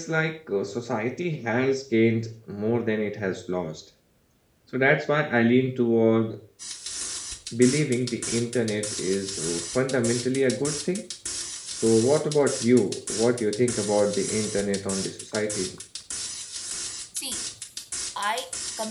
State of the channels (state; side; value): identical; both; correlation 1.00